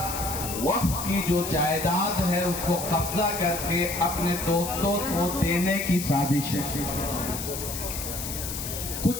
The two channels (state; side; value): noise; left; hiss, 6 dB below the sound